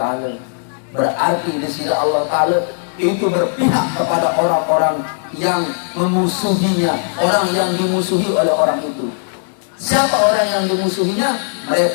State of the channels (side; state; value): right; silent; 63 dB below the other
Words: Berarti desida Allah Ta'ala itu berpihak kepada orang-orang yang memusuhinya, orang yang dimusuhi oleh orang itu. Siapa orang yang dimusuhinya?